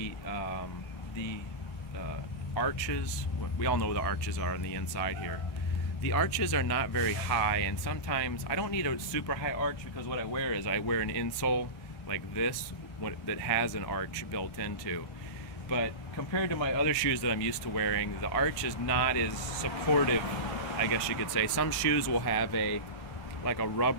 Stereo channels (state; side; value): late; right; 1.3 ms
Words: arches, we all know what the arches are on the inside here. The arches are not very high, and sometimes I don't need a super high arch because what I wear is I wear an insole like this that has an arch built into. But compared to my other shoes that I'm used to wearing, the arch is not as supportive, I guess you could say. Some shoes will have like a